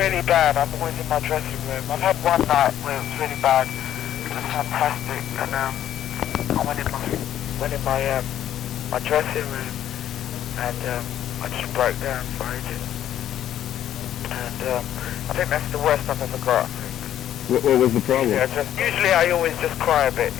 bad, I'm always in my dressing room. I've had one night where it was really bad. It was fantastic, and I went in my dressing room, and I just broke down for ages. And I think that's the worst I've ever got, I think. What was the problem? Usually I always just cry a bit,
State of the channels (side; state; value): right; quieter; 11.4 dB